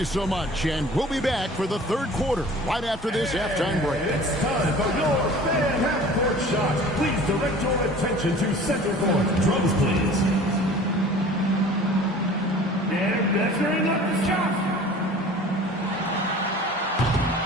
so much. And we'll be back for the third quarter right after this halftime break. It's time for your fan half-court shot. Please direct your attention to center court. Drums, please. And measuring up the shot.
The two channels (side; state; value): both; normal; correlation 0.45